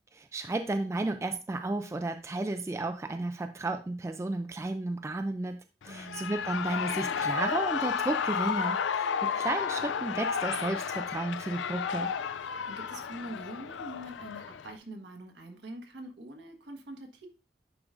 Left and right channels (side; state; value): both; normal; correlation 0.30